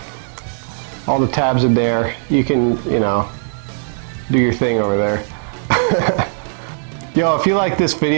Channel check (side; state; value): left; silent; 60 dB below the other